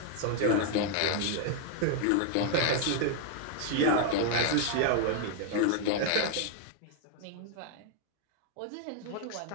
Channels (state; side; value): different; both; correlation 0.00